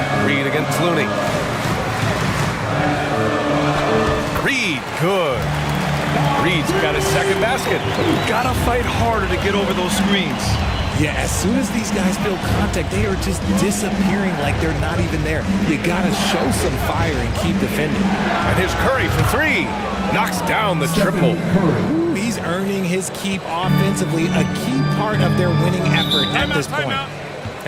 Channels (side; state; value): both; identical; correlation 1.00